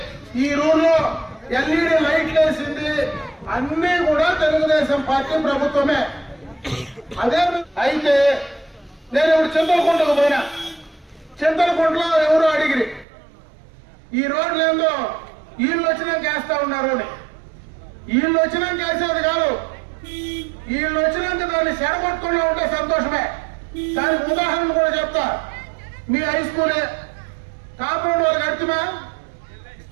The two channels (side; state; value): left; drops out; at 13.1 s